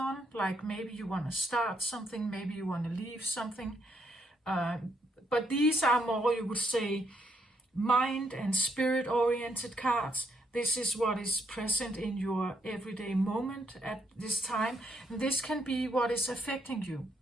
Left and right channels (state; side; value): normal; both; correlation 0.74